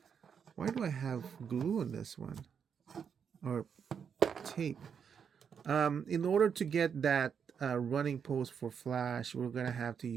why do I have glue on this one or tape? In order to get that running pose for Flash, we're gonna have to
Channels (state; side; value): quieter; left; 7.1 dB